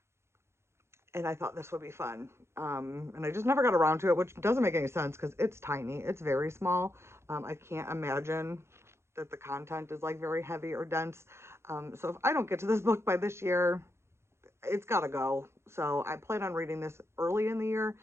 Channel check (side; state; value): left; late; 0.13 ms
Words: and I thought this would be fun. And I just never got around to it, which doesn't make any sense because it's tiny, it's very small. I can't imagine that the content is like very heavy or dense. So if I don't get to this book by this year, it's got to go. So I plan on reading this early in the year